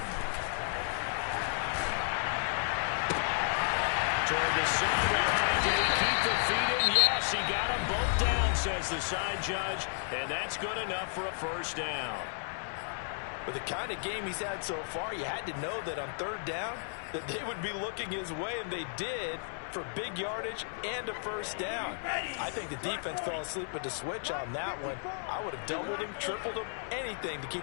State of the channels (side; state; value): right; silent; 55 dB below the other